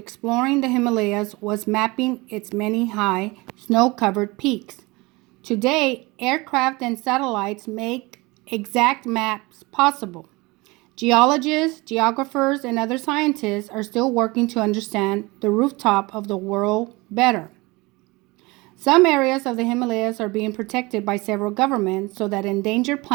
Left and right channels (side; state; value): left; quieter; 23.7 dB